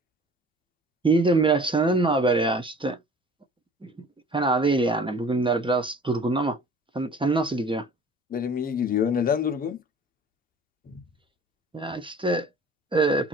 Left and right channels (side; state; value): both; normal; correlation 0.46